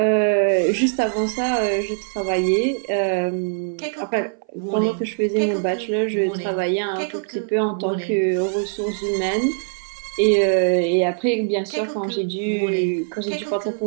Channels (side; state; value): left; silent; 59 dB below the other